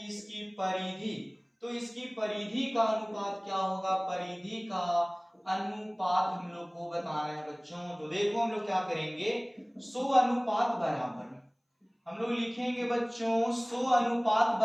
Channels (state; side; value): identical; both; correlation 1.00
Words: इसकी परिधि का अनुपात क्या होगा, परिधि का अनुपात हम लोग को बताना है बच्चों। तो देखो हम लोग क्या करेंगे, 100 अनुपात बराबर हम लोग लिखेंगे बच्चों, 100 अनुपात